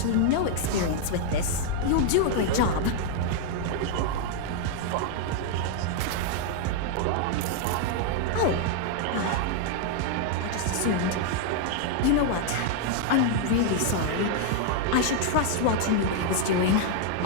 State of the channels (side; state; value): both; different; correlation 0.00